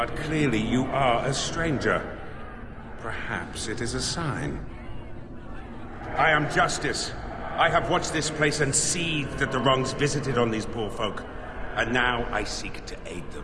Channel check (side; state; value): both; identical; correlation 1.00